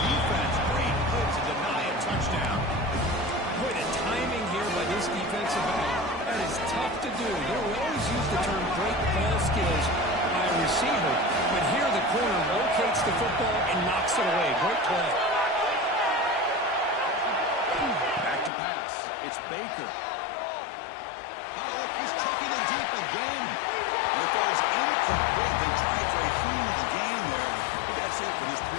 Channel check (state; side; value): drops out; right; at 18.5 s